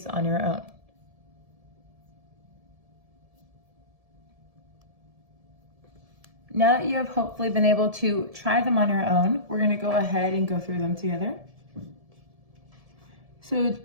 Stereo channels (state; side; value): late; left; 1.7 ms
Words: on your own. Now that you have hopefully been able to try them on your own, we're going to go ahead and go through them together. So